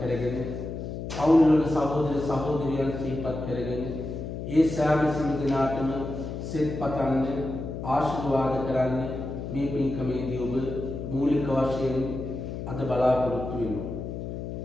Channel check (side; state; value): left; noise; hum, 6 dB below the sound